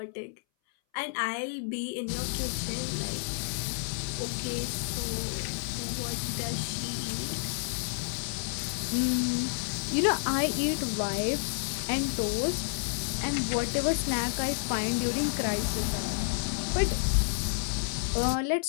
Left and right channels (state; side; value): silent; right; 58 dB below the other